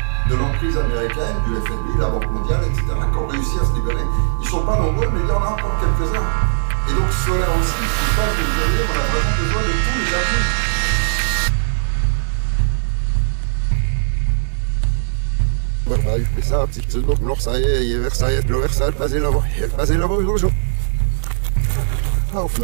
de l'emprise américaine, du FMI, la Banque mondiale, etc., qui ont réussi à se libérer. Ils ne sont pas nombreux, mais il y en a encore quelques-uns. Et donc cela aussi, c'est pas nous aider, on a vraiment besoin de tous les appuis.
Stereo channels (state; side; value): silent; left; 59 dB below the other